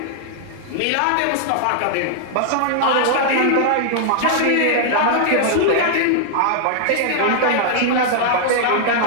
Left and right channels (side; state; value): both; different; correlation -0.01